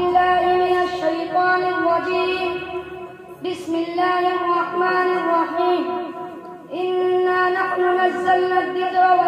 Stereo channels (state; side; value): identical; both; correlation 1.00